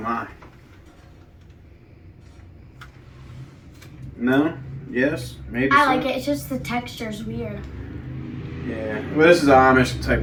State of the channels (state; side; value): identical; both; correlation 1.00